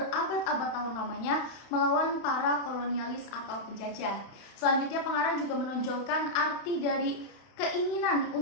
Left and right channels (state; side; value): late; right; 31 ms